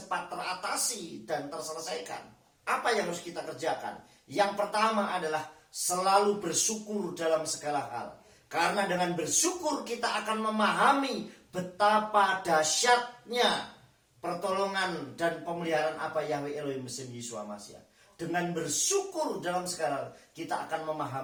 teratasi dan terselesaikan? Apa yang harus kita kerjakan? Yang pertama adalah selalu bersyukur dalam segala hal. Karena dengan bersyukur kita akan memahami betapa dahsyatnya pertolongan dan pemeliharaan apa Yahweh Elohim beserta Yeshua Mashiach. Dengan bersyukur dalam segala hal, kita akan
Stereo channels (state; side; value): identical; both; correlation 1.00